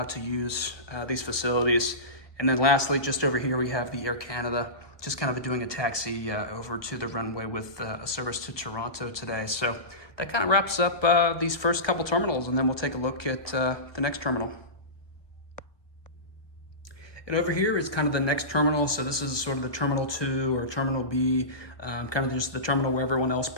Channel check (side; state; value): right; late; 1.2 ms